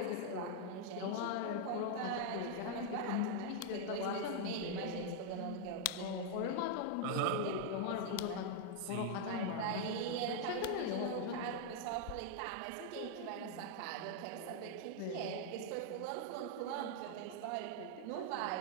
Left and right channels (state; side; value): different; both; correlation 0.00